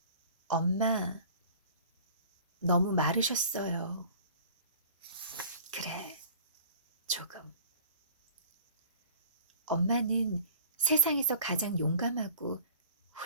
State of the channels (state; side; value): inverted; both; correlation -0.47